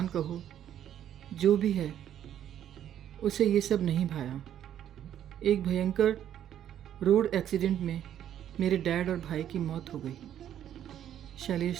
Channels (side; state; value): left; quieter; 10.6 dB